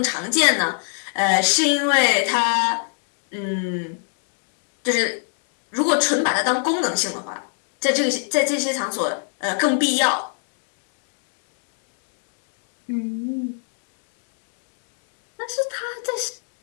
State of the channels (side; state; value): right; silent; digital silence